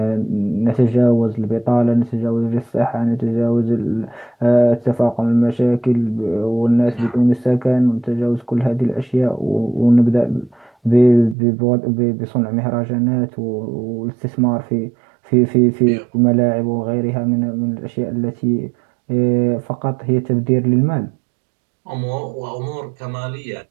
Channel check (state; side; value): drops out; left; at 11.4 s